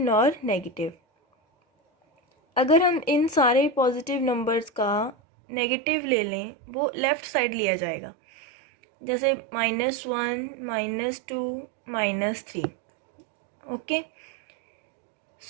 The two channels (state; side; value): drops out; left; at 5.2 s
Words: negative. अगर हम इन सारे positive numbers का negative ले लें वो left side लिया जाएगा, जैसे -1, -2, -3. Okay,